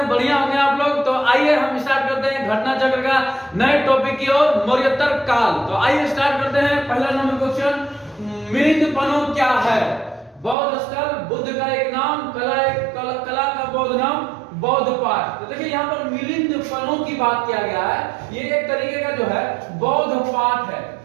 बढ़िया होंगे आप लोग। तो आइए हम स्टार्ट करते हैं घटना चक्र का नए टॉपिक की ओर, मौर्योत्तर काल। तो आइए स्टार्ट करते हैं। पहला नंबर क्वेश्चन, मिलिंद पनो क्या है? बौद्ध स्थल, बुद्ध का एक नाम, कला का बौद्ध नाम, बौद्ध पाठ। तो देखिए यहाँ पर मिलिंद पनो की बात किया गया है। ये एक तरीके का जो है बौद्ध पाठ है।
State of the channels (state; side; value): drops out; left; at 10.6 s